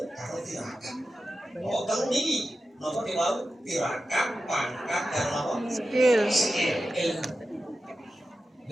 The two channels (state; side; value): normal; both; correlation 0.92